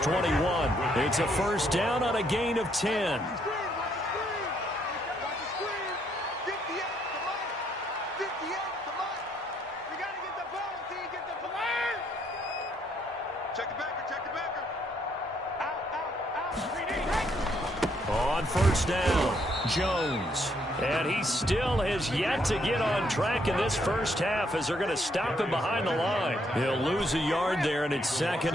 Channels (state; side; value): normal; both; correlation 0.71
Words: 21. It's a first down on a gain of 10. Check the backer, check the backer. On first down, Jones. And he still has yet to get on track in this first half as they're going to stop him behind the line. He'll lose a yard there, and it's